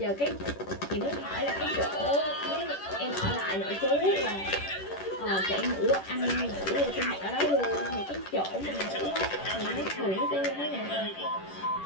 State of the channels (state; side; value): late; right; 10 ms